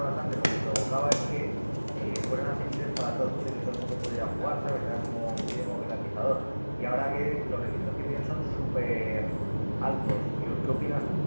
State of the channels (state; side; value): inverted; both; correlation -1.00